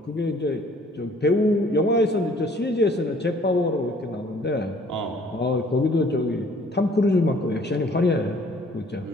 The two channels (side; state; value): both; normal; correlation 0.57